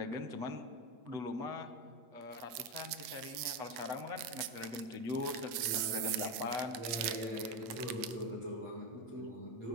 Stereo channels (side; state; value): left; late; 9.1 ms